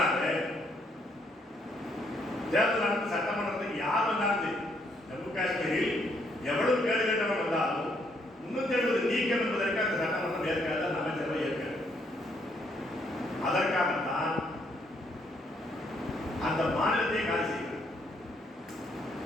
தேர்தல் நடத்த சட்டமன்றத்துக்கு யார் வந்தாலும் ஜம்மு காஷ்மீரில் எவ்வளவு கேடு கட்டவன் வந்தாலும் 370 நீக்கம் என்பதற்கு அந்த சட்டமன்றம் ஏற்காது, அந்த அமைச்சரவை ஏற்காது. அதற்காகத்தான் அந்த மாநிலத்தை காலி செய்கிறார்.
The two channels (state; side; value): normal; both; correlation 0.71